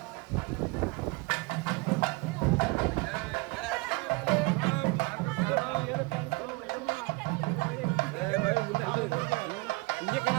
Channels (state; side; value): quieter; left; 25.8 dB